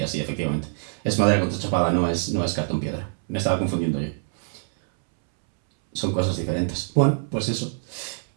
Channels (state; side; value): silent; left; 62 dB below the other